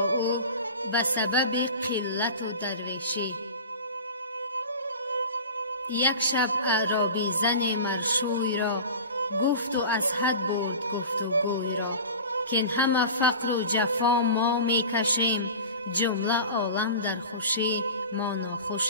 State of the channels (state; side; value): inverted; both; correlation -0.34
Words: او به سبب قلت و درویشی. یک شب اعرابی زن مرشوی را، گفت و از حد برد گفت و گوی را. که این همه فقر و جفا ما می کشیم، جمله عالم در خوشی ما